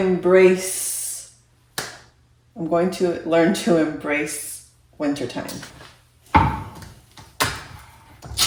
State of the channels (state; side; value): identical; both; correlation 1.00